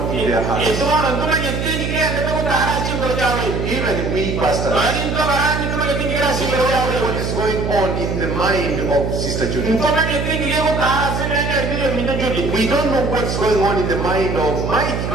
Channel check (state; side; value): noise; right; hum, 2 dB below the sound